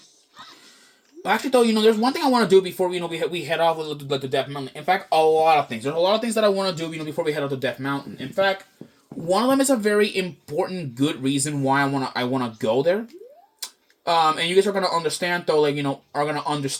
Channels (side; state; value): both; identical; correlation 1.00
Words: Actually, though, there's one thing I want to do before we head off to Death Mountain. In fact, a lot of things. There's a lot of things that I want to do, before we head off to Death Mountain. In fact, one of them is a very important, good reason why I wanna go there. And you guys are gonna understand, though. Are gonna